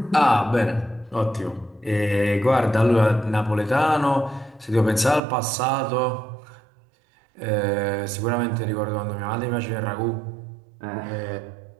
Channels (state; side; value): drops out; left; at 5.2 s